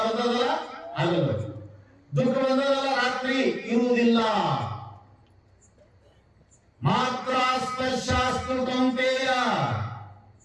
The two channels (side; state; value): both; identical; correlation 1.00